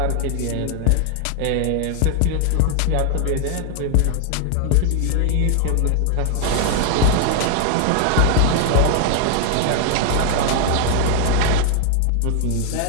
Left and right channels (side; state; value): both; different; correlation 0.00